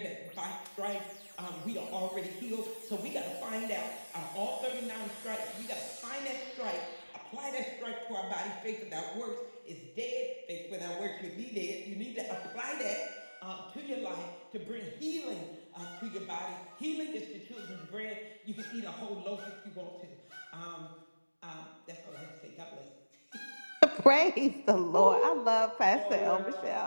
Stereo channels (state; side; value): inverted; both; correlation -1.00